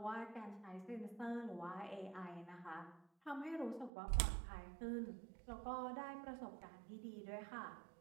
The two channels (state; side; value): drops out; left; at 3.9 s